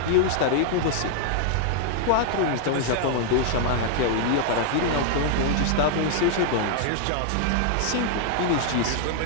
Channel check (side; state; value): both; different; correlation -0.01